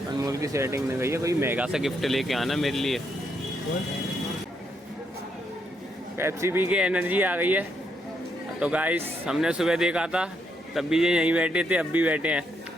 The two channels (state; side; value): normal; both; correlation 0.76